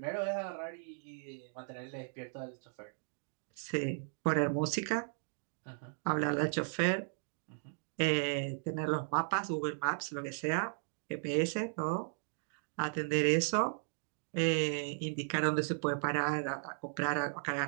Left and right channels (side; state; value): left; silent; digital silence